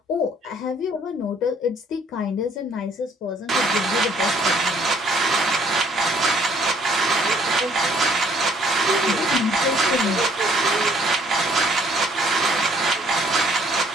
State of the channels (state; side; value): normal; both; correlation 0.62